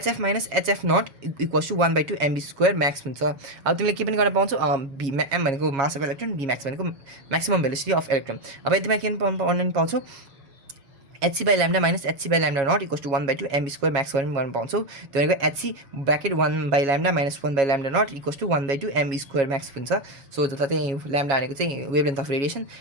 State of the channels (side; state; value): left; late; 7.3 ms